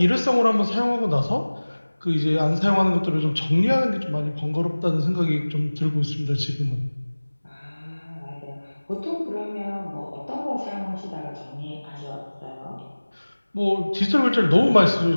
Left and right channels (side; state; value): both; inverted; correlation -1.00